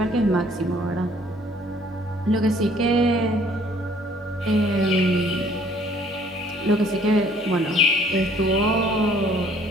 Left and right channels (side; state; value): both; normal; correlation 0.59